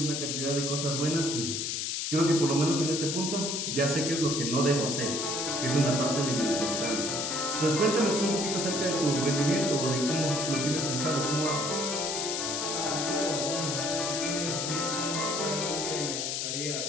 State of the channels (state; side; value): noise; left; hiss, 1 dB below the sound